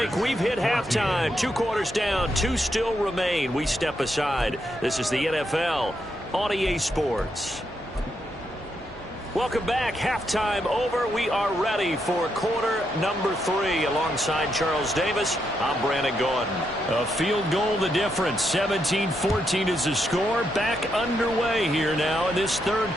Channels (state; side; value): normal; both; correlation 0.80